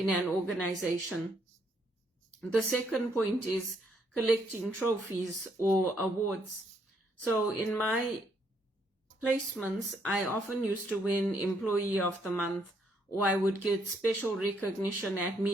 an organization. The second point is collecting trophies or awards. So in my placements, I often used to win Employee of the Month, or I would get special recognition at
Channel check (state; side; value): normal; both; correlation 0.72